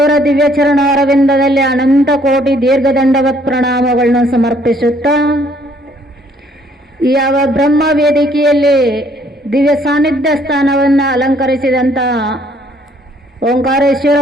ದಿವ್ಯಚರಣ ಅರವಿಂದದಲ್ಲಿ ಅನಂತ ಕೋಟಿ ದೀರ್ಘದಂಡವತ್ ಪ್ರಣಾಮಗಳನ್ನು ಸಮರ್ಪಿಸುತ್ತಾ, ಯಾವ ಬ್ರಹ್ಮ ವೇದಿಕೆಯಲ್ಲಿ ದಿವ್ಯ ಸಾನ್ನಿಧ್ಯ ಸ್ಥಾನವನ್ನು ಅಲಂಕರಿಸಿದಂಥ ಓಂಕಾರೇಶ್ವರ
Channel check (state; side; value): normal; both; correlation 0.64